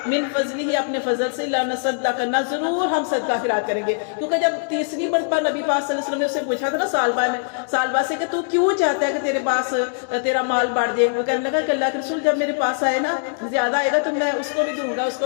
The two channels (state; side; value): silent; right; digital silence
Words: من فضلہ، اپنے فضل سے، لَنَصَدَّقَنَّ، ضرور ہم صدقہ خیرات کریں گے. کیونکہ جب تیسری مرتبہ نبی پاک صلی اللہ علیہ وسلم نے اسے پوچھا تھا نا سالبہ سے کہ تو کیوں چاہتا ہے کہ تیرے پاس تیرا مال بڑھ جائے، وہ کہنے لگا کہ اللہ کے رسول جب میرے پاس آئے نا زیادہ آئے گا تو میں اس کو بھی دوں گا، اس